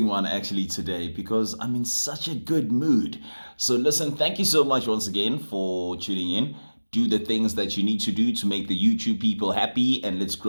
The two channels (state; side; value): inverted; both; correlation -1.00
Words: one actually today because I'm in such a good mood. So listen, thank you so much once again for tuning in. Do the things that you need to do to make the YouTube people happy, and let's